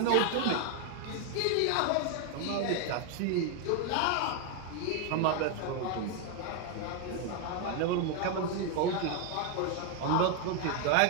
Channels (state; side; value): different; both; correlation 0.01